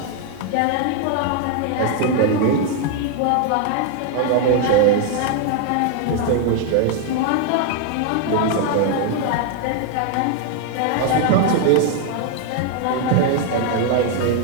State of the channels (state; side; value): different; both; correlation 0.00